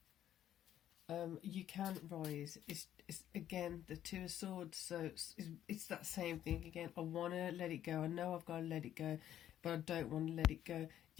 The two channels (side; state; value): right; quieter; 11.3 dB